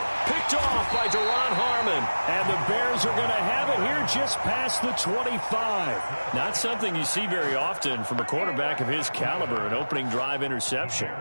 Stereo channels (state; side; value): inverted; both; correlation -1.00